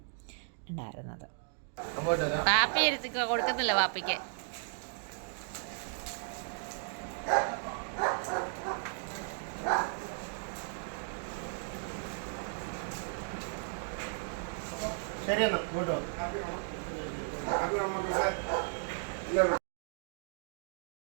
ഉണ്ടായിരുന്നത്. പാപ്പി കൊടുക്കുന്നില്ല പാപ്പിക്ക്. ശരിയെന്നാ കേട്ടോ.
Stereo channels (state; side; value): silent; left; 54 dB below the other